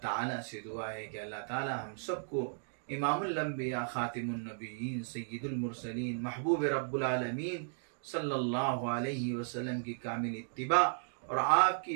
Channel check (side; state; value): left; silent; digital silence